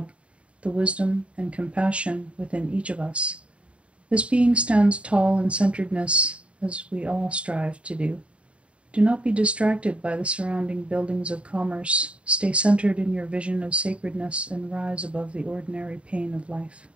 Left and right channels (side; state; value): left; late; 0.061 ms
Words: the wisdom and compassion within each of us. This being stands tall in centeredness, as we all strive to do. Do not be distracted by the surrounding buildings of commerce. Stay centered in your vision of sacredness and rise above the ordinary pain of life.